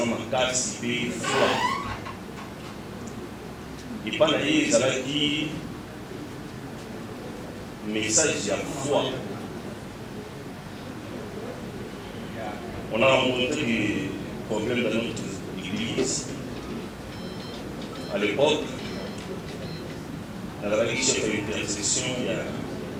m'a cassé, il foi. Et pas d'ailleurs, ça va dire message à foi. On a rencontré des problèmes dans notre église. À l'époque, dans la chef d'intercession, il y a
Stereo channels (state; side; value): identical; both; correlation 1.00